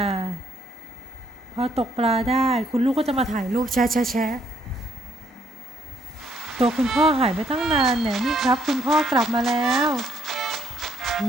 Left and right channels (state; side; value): normal; both; correlation 0.70